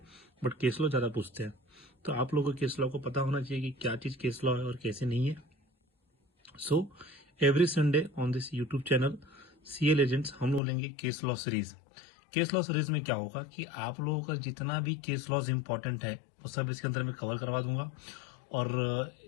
बट केस लॉ ज़्यादा पूछते हैं। तो आप लोगों को केस लॉ को पता होना चाहिए कि क्या चीज़ केस लॉ है और कैसे नहीं है। So every Sunday on this YouTube channel CL agents हम लोग लेंगे case law series. Case law series में क्या होगा कि आप लोगों का जितना भी केस लॉज इंपॉर्टेंट है वो सब इसके अंदर मैं कवर करवा दूंगा। और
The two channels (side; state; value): right; drops out; at 10.6 s